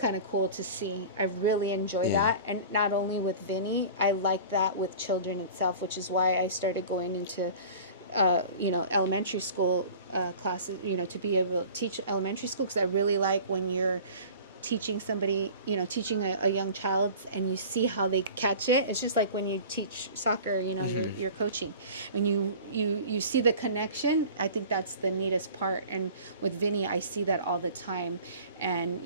of cool to see. I really enjoy that. And not only with Vinny, I like that with children itself, which is why I started going into, elementary school classes, to be able to teach elementary school, because I really like when you're teaching somebody, teaching a young child, and you see how they catch it. It's just like when you teach soccer, you're coaching. When you see the connection, I think that's the neatest part. And with Vinny, I see that all the time. And,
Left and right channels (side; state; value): both; inverted; correlation -0.41